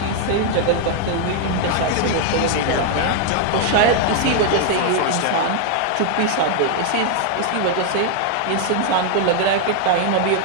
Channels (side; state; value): both; different; correlation 0.00